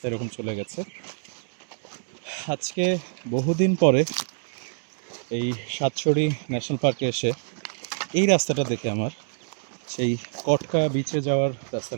এরকম চলে গেছে। আজকে বহুদিন পরে এই সাতছড়ি ন্যাশনাল পার্কে এসে এই রাস্তাটা দেখে আমার সেই কটকা বিচে যাওয়ার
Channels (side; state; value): left; silent; digital silence